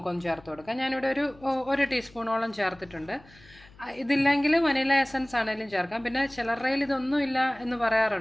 ചേർത്ത് കൊടുക്കാം. ഞാനിവിടെ ഒരു 1 ടീസ്പൂണോളം ചേർത്തിട്ടുണ്ട്. ഇതില്ലെങ്കിൽ വനില എസൻസ് ആണെങ്കിലും ചേർക്കാം. പിന്നെ ചിലരുടെ കയ്യിൽ ഇതൊന്നും ഇല്ല എന്ന്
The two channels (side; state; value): left; noise; hum, 25 dB below the sound